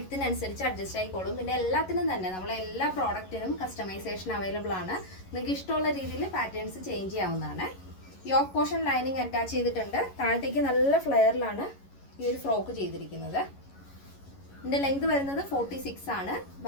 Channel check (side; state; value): right; late; 11 ms